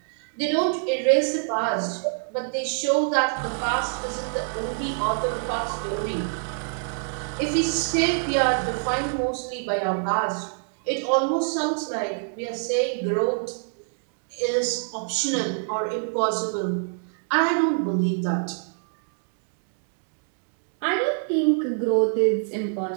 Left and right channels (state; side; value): silent; left; 61 dB below the other